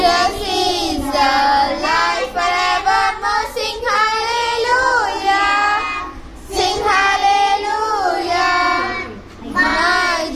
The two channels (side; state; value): both; identical; correlation 1.00